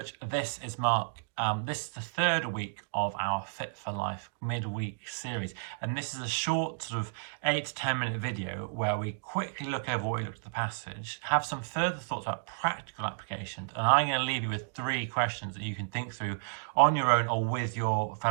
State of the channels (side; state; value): left; silent; digital silence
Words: This is Mark. This is the third week of our Fit for Life midweek series, and this is a short sort of 8 to 10 minute video where we quickly look over what we looked at the passage, have some further thoughts about practical applications, and I'm going to leave you with 3 questions that you can think through on your own or with your